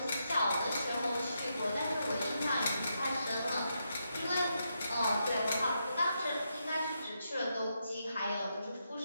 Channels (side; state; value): both; inverted; correlation -0.83